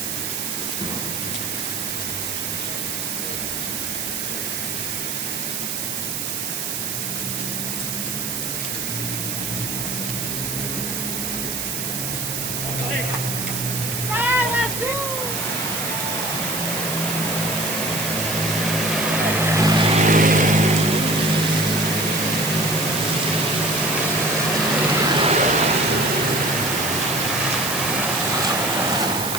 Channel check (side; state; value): right; noise; hiss, 2 dB below the sound